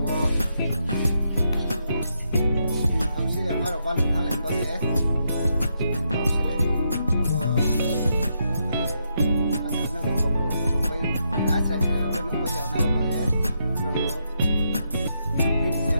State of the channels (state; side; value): inverted; both; correlation -0.80